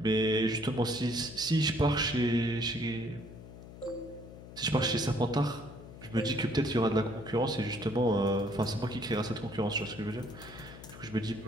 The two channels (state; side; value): noise; left; hum, 15 dB below the sound